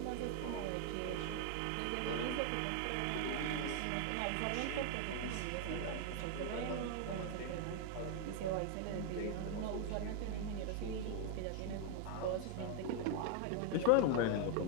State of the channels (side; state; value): both; different; correlation 0.00